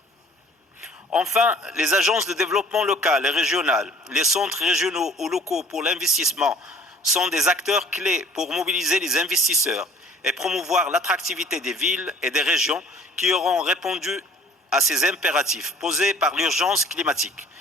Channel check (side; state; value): both; normal; correlation 0.52